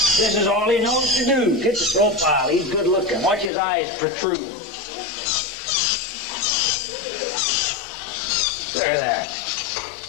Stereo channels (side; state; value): right; drops out; at 3.5 s